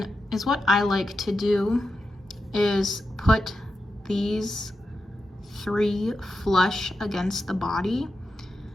is what I like to do is put these 3 flush against the body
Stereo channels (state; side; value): normal; both; correlation 0.89